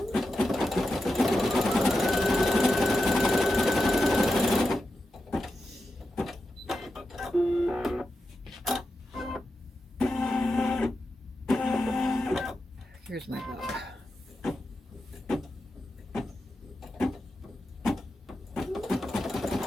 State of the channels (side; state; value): both; normal; correlation 0.89